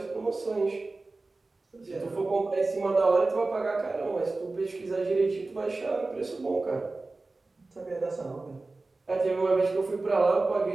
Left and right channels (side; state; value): left; quieter; 3.4 dB